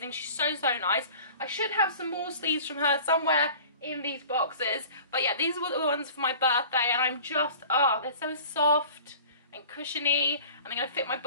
She's so nice. I should have some more sleeves from her somewhere in these boxes, but yeah, these were the ones for my birthday, and I'm just, oh, they're so soft and cushiony, and they're going to fit my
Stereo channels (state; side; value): inverted; both; correlation -0.44